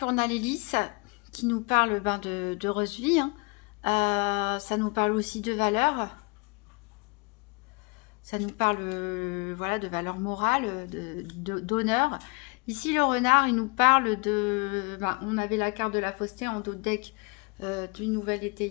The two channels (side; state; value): right; quieter; 30.8 dB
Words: on a l'hélice qui nous parle d'heureuse vie. Hein. Ça nous parle aussi de valeur. Ça nous parle voilà, de valeur morale, d'honneur. Ici, le renard, il nous parle de... on avait la carte de la fausseté en dos de deck d'une nouvelle